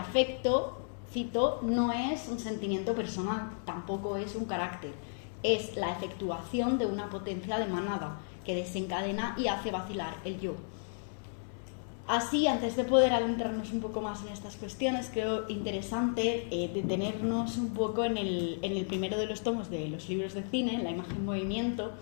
cito, no es un sentimiento personal, tampoco es un carácter, es la efectuación de una potencia de manada que desencadena y hace vacilar el yo. Así, antes de poder adentrarnos un poco más en estas cuestiones, creo interesante detenernos un poco en el primero de los tomos de los libros de cine, La imagen en movimiento,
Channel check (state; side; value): silent; right; 56 dB below the other